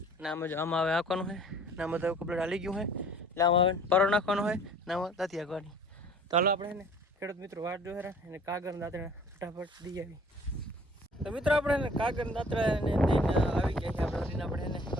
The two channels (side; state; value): both; normal; correlation 0.51